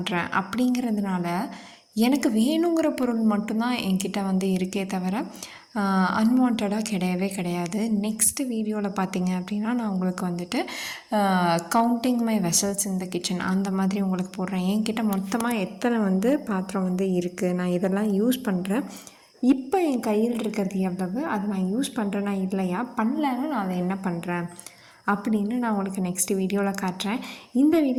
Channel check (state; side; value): identical; both; correlation 1.00